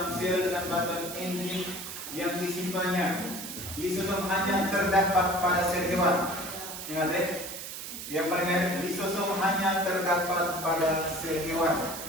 sel dengan bantuan enzim yang disimpannya. Lisosom hanya terdapat pada sel hewan. Ingat ya? Yang paling lisosom hanya terdapat pada sel hewan.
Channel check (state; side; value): noise; right; hiss, 8 dB below the sound